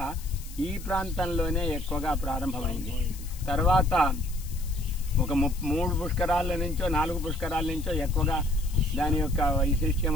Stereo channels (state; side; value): noise; left; hiss, 17 dB below the sound